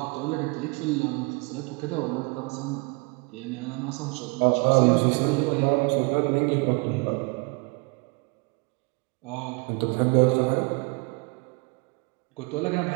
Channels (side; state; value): left; quieter; 30.5 dB